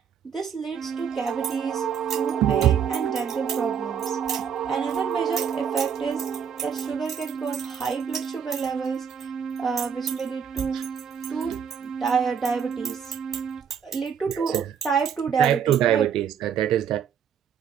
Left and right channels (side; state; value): left; quieter; 7.5 dB